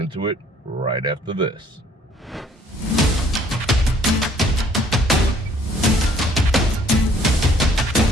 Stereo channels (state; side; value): normal; both; correlation 0.60